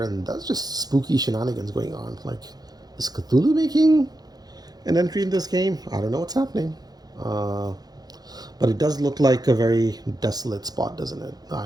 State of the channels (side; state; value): left; late; 0.19 ms